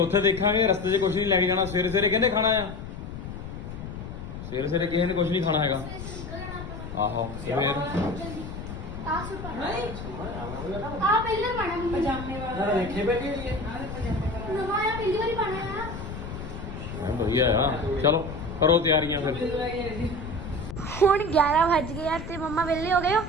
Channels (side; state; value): left; noise; rumble, 9 dB below the sound